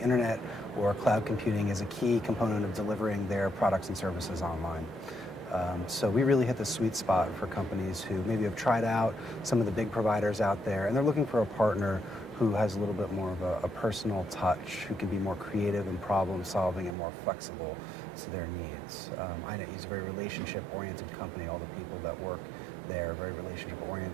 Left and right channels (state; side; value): drops out; left; at 16.9 s